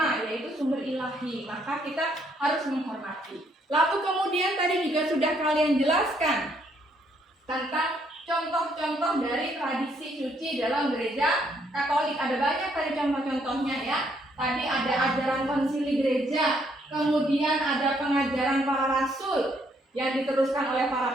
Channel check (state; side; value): normal; both; correlation 0.70